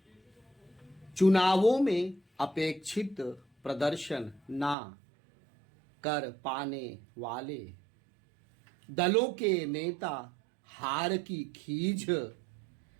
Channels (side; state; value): left; drops out; at 4.8 s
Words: चुनावों में अपेक्षित प्रदर्शन ना कर पाने वाले दलों के नेता हार की खींच